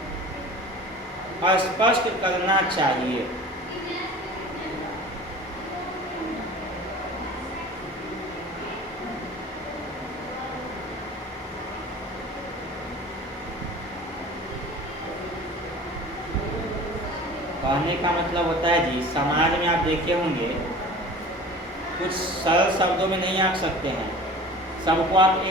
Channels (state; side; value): normal; both; correlation 0.41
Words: स्पष्ट करना चाहिए। कहने का मतलब होता है जी, समाज में आप देखे होंगे कुछ सरल शब्दों में नहीं आंक सकते हैं, सबको आप